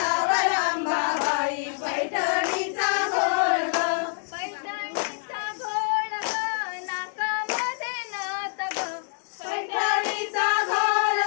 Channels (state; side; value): silent; right; 61 dB below the other